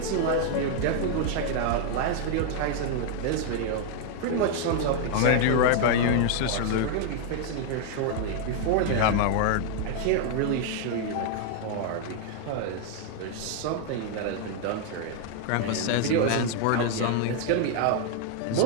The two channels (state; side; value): different; both; correlation 0.00